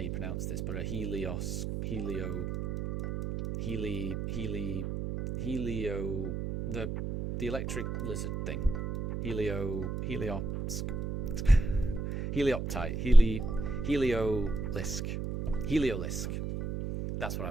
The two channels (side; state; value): right; noise; hum, 4 dB below the sound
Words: pronounce this, but a Helio... The electric lizard thing. Heliolisk. That's what I